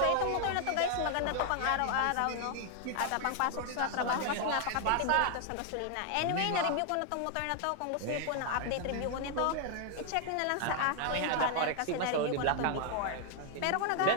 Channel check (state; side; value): different; both; correlation 0.00